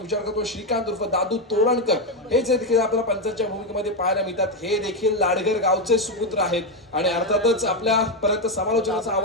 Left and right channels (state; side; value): normal; both; correlation 0.07